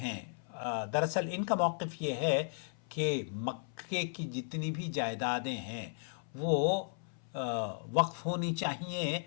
دراصل ان کا موقف یہ ہے کہ مکے کی جتنی بھی جائیدادیں ہیں وہ وقف ہونی چاہیے،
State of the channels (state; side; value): silent; right; 54 dB below the other